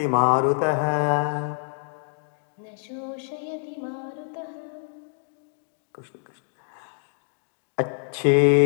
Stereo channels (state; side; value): silent; right; digital silence